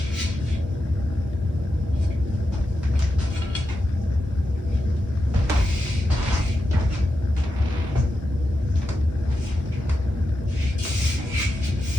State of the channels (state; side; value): normal; both; correlation 0.88